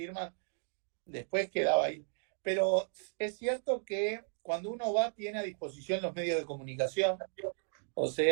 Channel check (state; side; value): silent; left; digital silence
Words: después quedaba ahí. Pero es cierto que cuando uno va, tiene a disposición los medios de comunicación, o